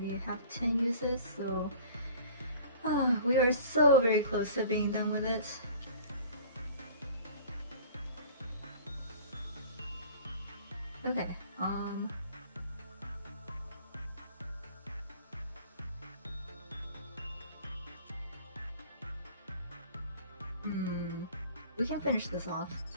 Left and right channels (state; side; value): inverted; both; correlation -0.47